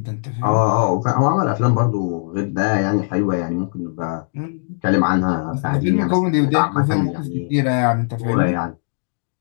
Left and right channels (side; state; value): right; silent; digital silence